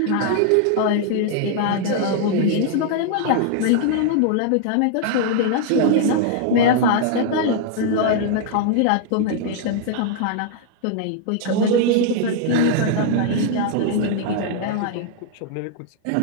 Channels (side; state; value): both; different; correlation 0.00